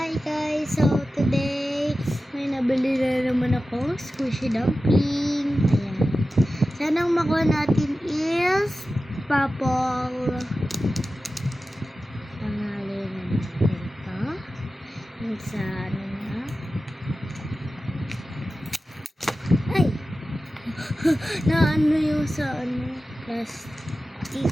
guys! So today, may nabili na naman ako squishy dumpling. Ayan. Sana ang makuha natin is purple. Pangalan na natin ito. Yung sa ano na. Ay! na ano yung sa ano, plastic.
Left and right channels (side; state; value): both; normal; correlation 0.94